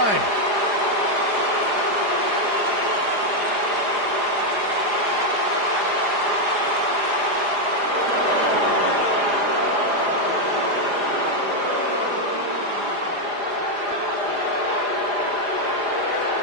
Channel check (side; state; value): left; late; 4.9 ms